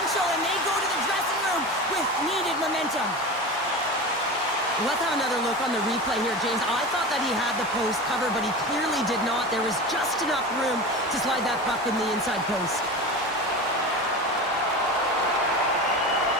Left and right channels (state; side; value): normal; both; correlation 0.29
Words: and they go to the dressing room with needed momentum. Let's have another look on the replay here, James. I thought that he had the post covered, but he clearly did not. There was just enough room to slide that puck in the inside post.